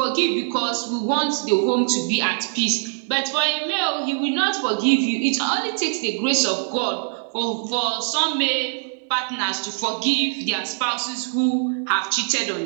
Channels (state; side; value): silent; left; 64 dB below the other